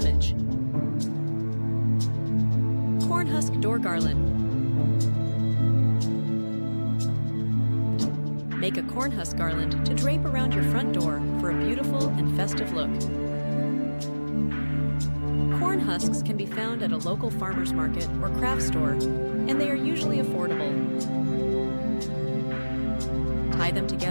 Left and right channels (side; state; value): both; inverted; correlation -1.00